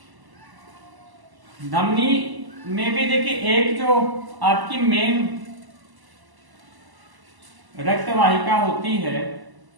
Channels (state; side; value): late; left; 1.0 ms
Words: धमनी में भी देखिए एक जो आपकी मेन रक्तवाहिका होती है,